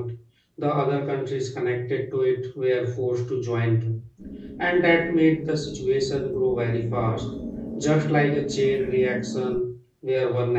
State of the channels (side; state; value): both; identical; correlation 1.00